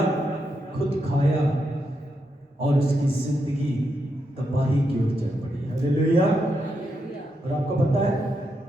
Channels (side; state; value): both; normal; correlation 0.83